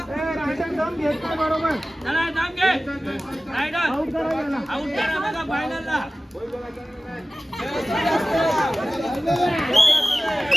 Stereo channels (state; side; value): normal; both; correlation 0.96